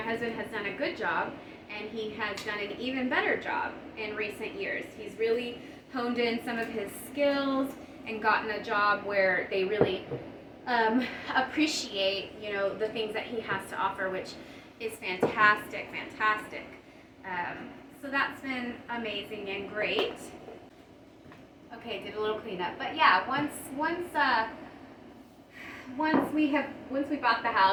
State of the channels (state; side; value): identical; both; correlation 1.00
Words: has done a good job, and he has done an even better job in recent years. He's really honed in some of his skills and gotten a job where they really appreciate, the things that he has to offer, which is fantastic. So that's been amazing and great. Okay, did a little cleanup, but yeah, once we bought the